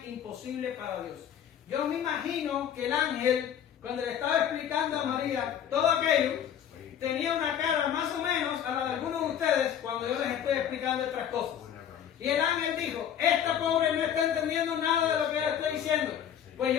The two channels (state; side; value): quieter; right; 9.5 dB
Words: imposible para Dios. Yo me imagino que el ángel, cuando le estaba explicando a María todo aquello, tenía una cara más o menos a la de algunos de ustedes cuando yo les estoy explicando otras cosas. Y el ángel dijo, esta pobre no está entendiendo nada de lo que le estoy diciendo. Pues